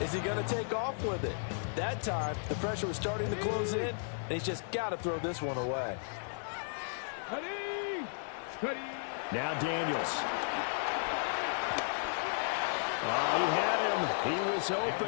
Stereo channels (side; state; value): right; silent; digital silence